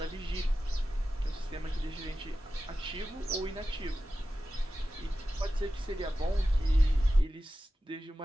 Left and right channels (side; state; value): both; normal; correlation 0.93